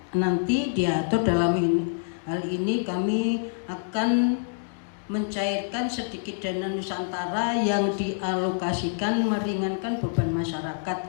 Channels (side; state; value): right; silent; digital silence